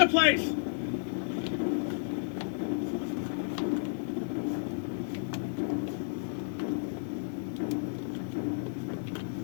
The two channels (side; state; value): right; silent; digital silence